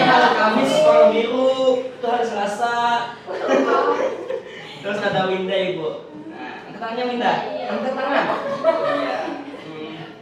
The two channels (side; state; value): both; identical; correlation 1.00